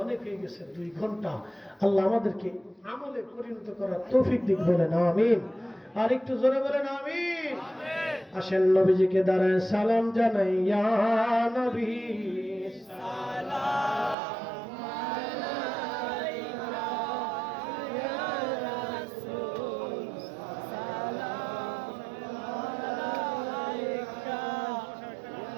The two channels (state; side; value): drops out; left; at 14.2 s